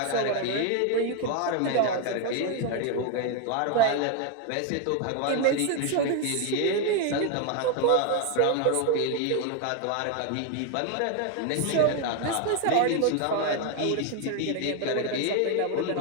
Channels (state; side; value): different; both; correlation 0.01